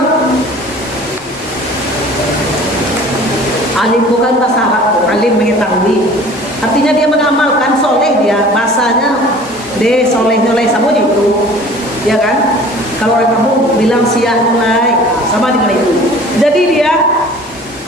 alim bukan bahasa Arab, alim mengetahui. Artinya dia mengamalkan, soleh dia. Bahasanya de soleh-soleh sama itu, ya kan? Kalau orang kamu bilang sia nilai, sama dengan itu. Jadi dia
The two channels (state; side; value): normal; both; correlation 0.46